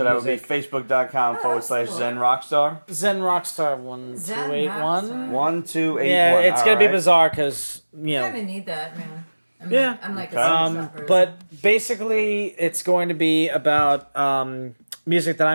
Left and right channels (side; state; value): both; inverted; correlation -1.00